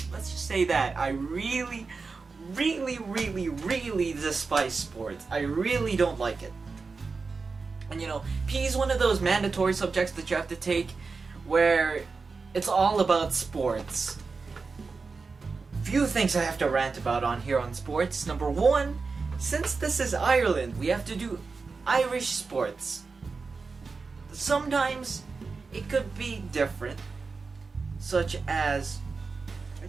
Let's just say that. I really despise sports. I really don't like it. And you know, PE is one of those mandatory subjects that you have to take where it's all about sports. Few things I have to rant about on here on sports. Number one, since this is Ireland, we have to do Irish sports. Sometimes it could be different, such as, I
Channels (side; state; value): left; quieter; 4.4 dB